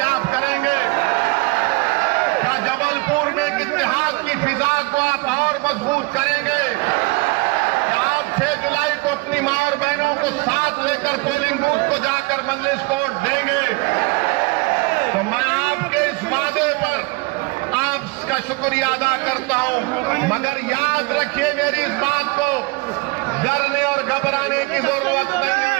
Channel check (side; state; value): left; quieter; 26.0 dB